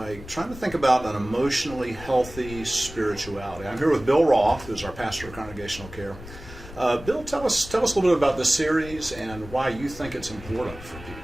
trying to think about an emotionally healthy spirituality. I'm here with Bill Roth, who's our pastor of congregational care. Bill, tell us a little bit about this series and why you think it's important for people.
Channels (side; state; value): left; noise; rumble, 15 dB below the sound